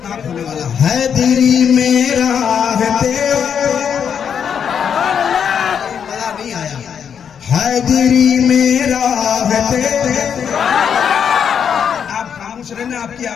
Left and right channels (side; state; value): right; quieter; 7.7 dB